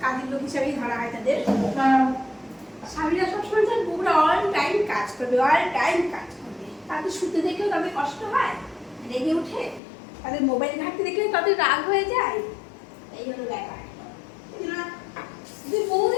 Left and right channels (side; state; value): right; drops out; at 9.8 s